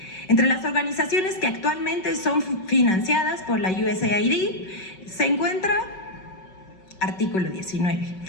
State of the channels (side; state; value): right; late; 5.3 ms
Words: Entre las organizaciones que actualmente son financiadas por la USAID se encuentra artículo 19,